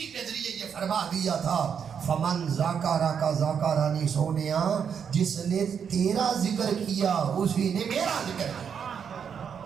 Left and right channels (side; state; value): left; quieter; 7.3 dB